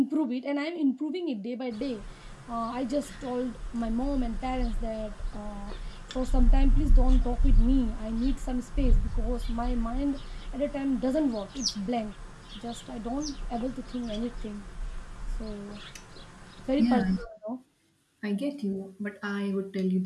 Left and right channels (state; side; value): identical; both; correlation 1.00